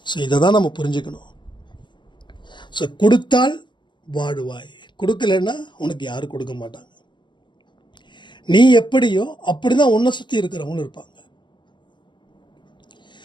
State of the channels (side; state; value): right; late; 0.22 ms